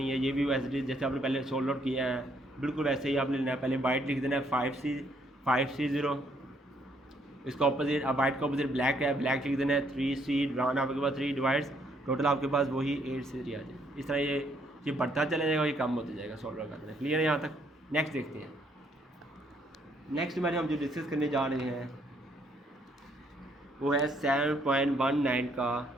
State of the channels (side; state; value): both; normal; correlation 0.69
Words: है ये भी वैसे जैसे आपने पहले सोल्व आउट किया है बिल्कुल वैसे ही आपने लेना है। पहले वाइट लिख देना है 5C 0, इसका ऑपोजिट, अब वाइट का ऑपोजिट ब्लैक है, ब्लैक लिख देना है 3C, ड्रॉन आपके पास 3 डिवाइड्स, टोटल आपके पास वही 8C3 आ जाए। इस तरह ये बढ़ता चला जाएगा, ये कम होता जाएगा सॉल्व करना। क्लियर है यहाँ तक। नेक्स्ट देखते हैं, नेक्स्ट मैंने हम जो डिस्कस करने जा रहे हैं वो है 7.19 का